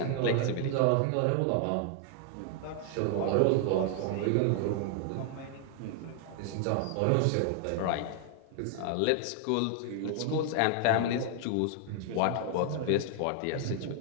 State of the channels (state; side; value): different; both; correlation 0.00